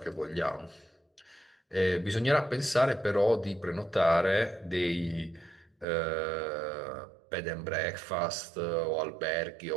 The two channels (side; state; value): left; drops out; at 5.9 s